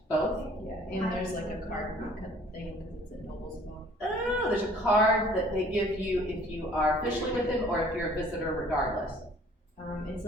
both? Yeah, and there's like a card thing because it's in Noblesville. Oh, there's a card that they give you if you are officially with them or if you're a visitor regardless. It's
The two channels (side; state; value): both; normal; correlation 0.54